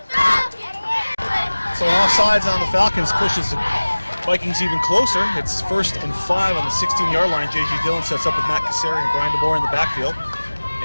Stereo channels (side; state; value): both; inverted; correlation -1.00